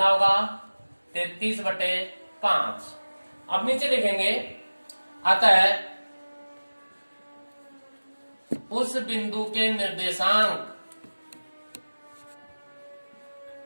होगा 33 बटे 5। अब नीचे लिखेंगे, अतः उस बिंदु के निर्देशांक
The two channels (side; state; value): both; inverted; correlation -1.00